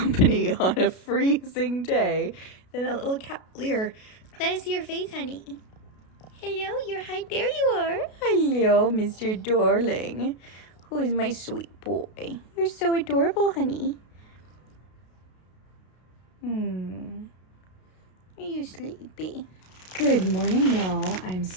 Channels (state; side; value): late; right; 32 ms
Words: on a freezing day than a little cavalier. Let us see your face, honey. Hello, you're hi. There you are. Hello, Mr. Darling. Who is my sweet boy? You're so adorable, honey. Are you sleepy? Good morning, y'all. I'm